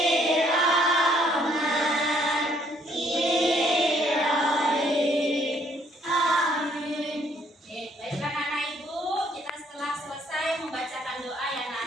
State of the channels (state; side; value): normal; both; correlation 0.66